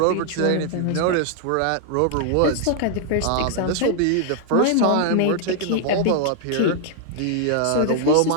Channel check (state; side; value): different; both; correlation 0.00